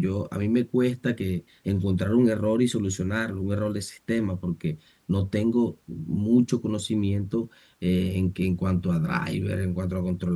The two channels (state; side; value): identical; both; correlation 1.00